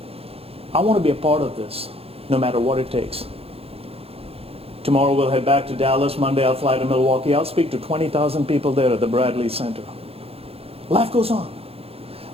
I want to be a part of this, no matter what it takes. Tomorrow we'll head back to Dallas. Monday I'll fly to Milwaukee. I'll speak to 20,000 people there at the Bradley Center. Life goes on.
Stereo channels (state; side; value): late; left; 0.28 ms